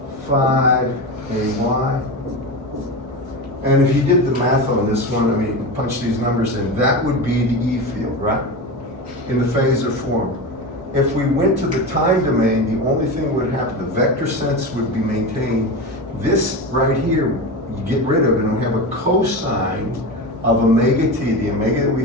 5ay. And if you did the math on this one, I mean, punch these numbers in, that would be the E field, right? In the phasor form. If we went to the time domain, the only thing would happen, the vector sense would be maintained. This right here, you get rid of it, and we have a cosine of omega t, the omega that we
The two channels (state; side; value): normal; both; correlation 0.23